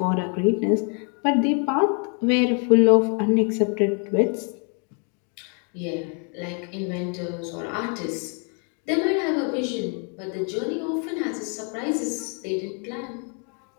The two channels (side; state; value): right; quieter; 39.4 dB